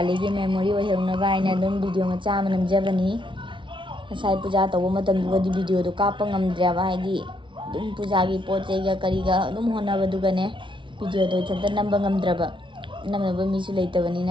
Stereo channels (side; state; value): left; late; 0.24 ms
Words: gi memory oheuna ba aina dum video macha manam jabani. Sai puja tau matam dugadi video do kapa ngamdra ba haidi dum puja gi poche ga kariga dum hona badugane video do chanta namba ngamdraba namaba misu leitabani